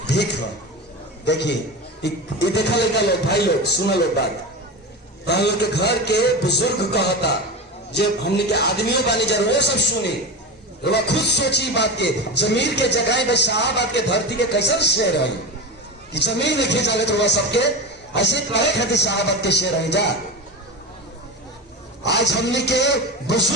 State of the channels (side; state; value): both; normal; correlation 0.24